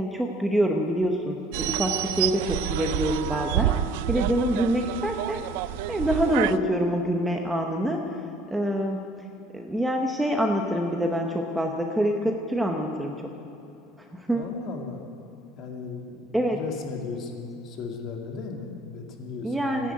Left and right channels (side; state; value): both; normal; correlation 0.61